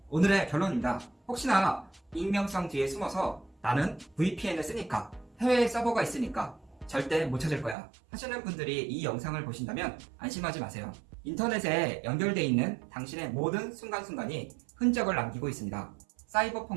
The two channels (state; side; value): drops out; left; at 7.8 s